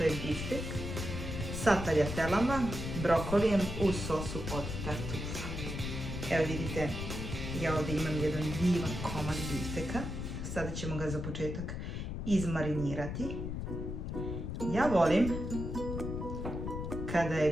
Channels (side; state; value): left; noise; rumble, 5 dB below the sound